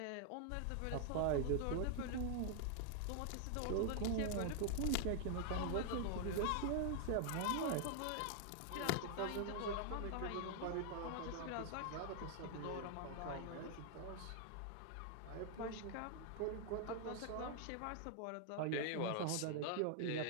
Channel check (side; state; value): both; different; correlation 0.00